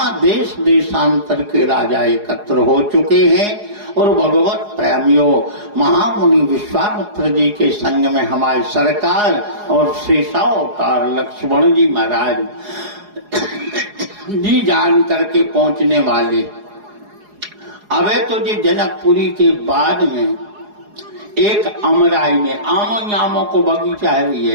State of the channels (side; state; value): left; late; 4.8 ms